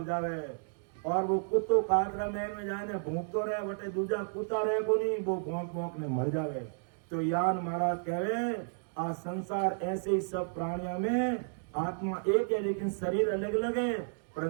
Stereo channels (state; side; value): silent; left; digital silence